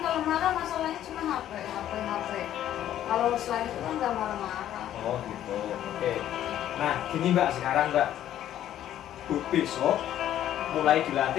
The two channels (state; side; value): quieter; right; 11.7 dB